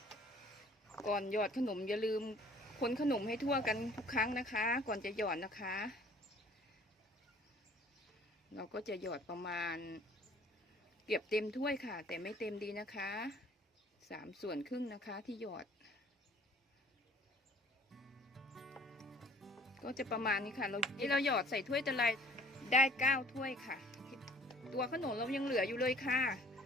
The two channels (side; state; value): both; normal; correlation 0.54